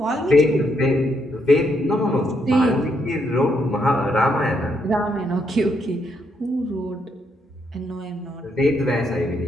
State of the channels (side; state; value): both; normal; correlation 0.76